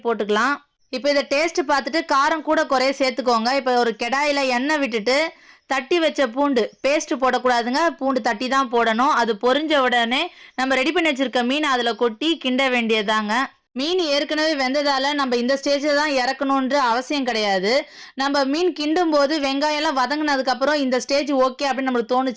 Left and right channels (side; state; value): both; identical; correlation 1.00